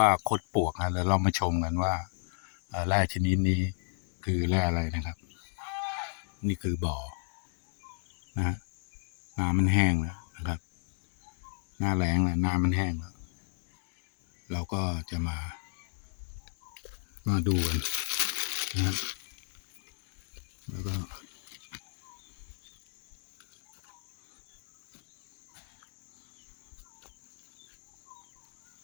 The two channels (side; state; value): right; silent; digital silence